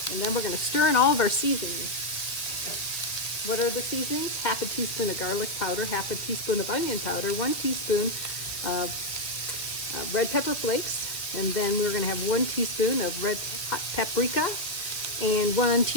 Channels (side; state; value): right; late; 2.0 ms